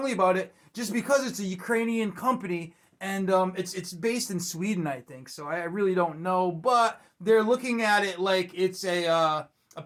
about it just because it's a Ukrainian company and it's based in Sweden, I think. So I really don't know, but they're looking at it like it's a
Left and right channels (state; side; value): identical; both; correlation 1.00